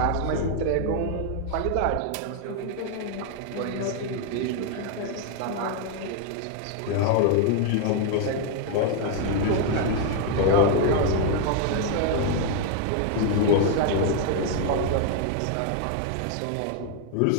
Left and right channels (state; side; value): different; both; correlation 0.00